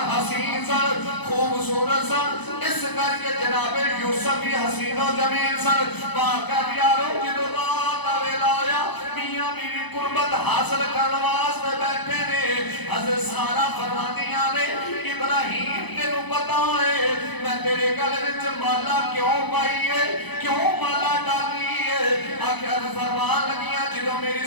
حسین سن خوبصورت سن اس کر کے جناب یوسف بھی حسین و جمیل سن باقر یارو جدو رات ویلا آیا میاں بیوی قربت حاصل کرنے واسطے بیٹھے نے حضرت سارا فرماندیاں نے ابراہیم تینوں پتا ہے میں تیرے گلے وچ مالا کیوں پائی ہے کیوں مالا ڈالی ہے آخر فرمان لگیاں جدو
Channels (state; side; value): late; right; 0.99 ms